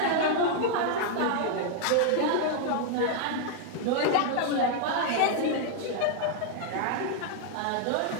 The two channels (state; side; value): different; both; correlation 0.00